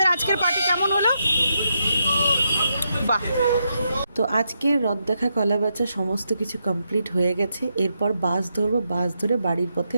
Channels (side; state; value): both; inverted; correlation -0.82